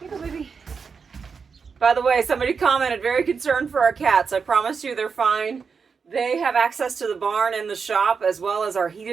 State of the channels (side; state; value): left; quieter; 5.6 dB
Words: you go, baby. By the way, somebody commented, very concerned for our cats. I promise you they're fine. They have access to the barn and the shop as well as our